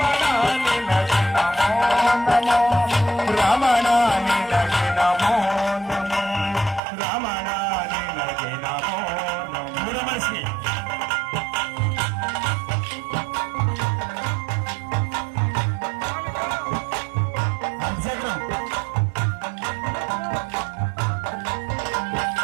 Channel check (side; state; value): left; drops out; at 6.8 s